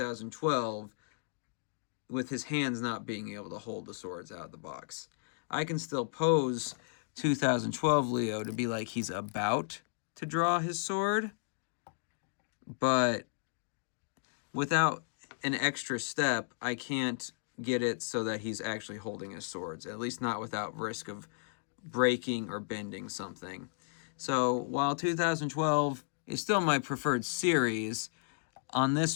with his hands not being able to hold the swords out of the box. I can still pose 2012 Leo to be like he's about to draw his sword, but without an extra step, I can't get it so that he's actually holding his swords, at least not without risk of breaking or bending something. So while 2012 is still my preferred series. On this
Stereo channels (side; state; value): right; silent; digital silence